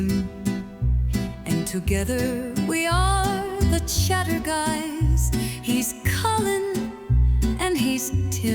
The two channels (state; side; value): identical; both; correlation 1.00